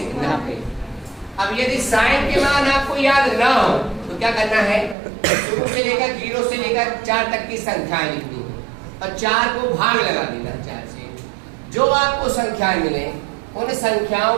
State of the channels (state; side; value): drops out; left; at 5.0 s